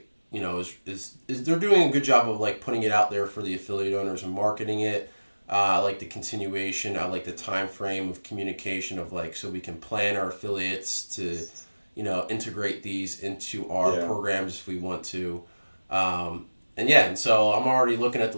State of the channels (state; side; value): inverted; both; correlation -1.00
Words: is they're doing a good job of like putting it out there for the affiliate owners and marketing it. I like the continuation. I like the time frame of communication of like, so we can plan our affiliates to, integrate these into our programs if we want to. And so I'm already looking at